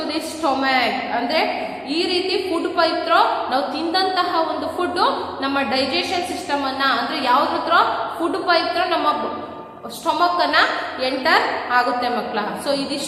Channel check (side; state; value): both; identical; correlation 1.00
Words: the stomach. ಅಂದ್ರೆ ಈ ರೀತಿ ಫುಡ್ ಪೈಪ್ ಥ್ರೂ ನಾವು ತಿಂದಂತಹ ಒಂದು ಫುಡ್ ನಮ್ಮ ಡೈಜೆಷನ್ ಸಿಸ್ಟಮ್ ಅನ್ನ ಅಂದ್ರೆ ಯಾವ್ದ್ರ ಫುಡ್ ಪೈಪ್ ಥ್ರೂ ನಮ್ಮ ಸ್ಟೊಮಕ್ ಅನ್ನ ಎಂಟರ್ ಆಗುತ್ತೆ ಮಕ್ಕಳ. ಸೊ